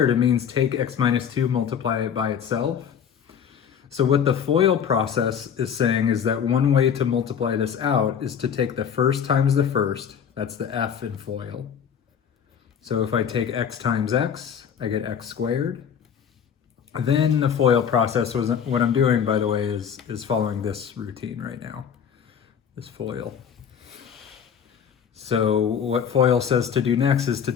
it means take x minus 2, multiply it by itself. So what the FOIL process is saying is that one way to multiply this out is to take the first times the first. That's the f in FOIL. So if I take x times x, I get x squared. Then the FOIL process, what I'm doing, by the way, is following this routine right now, this FOIL. So what FOIL says to do next is to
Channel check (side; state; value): right; quieter; 7.8 dB